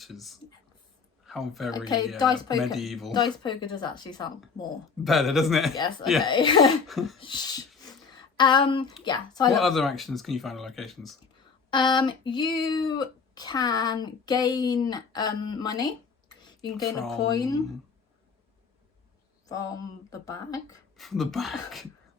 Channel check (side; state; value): right; quieter; 5.4 dB